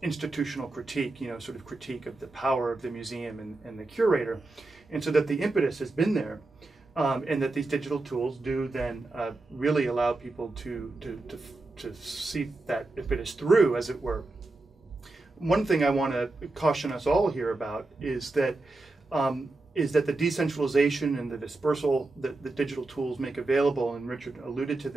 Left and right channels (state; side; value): quieter; left; 3.1 dB